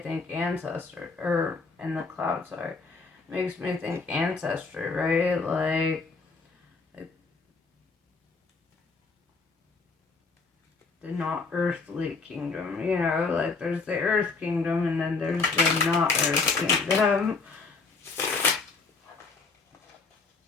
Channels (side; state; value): right; quieter; 4.3 dB